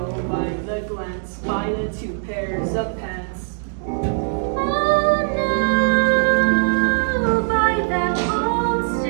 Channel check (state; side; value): silent; left; digital silence